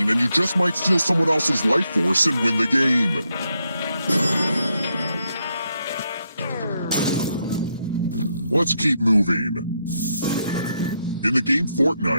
and you just might steal someone else's life force and win the game. Let's keep moving. In the game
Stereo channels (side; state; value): both; inverted; correlation -0.81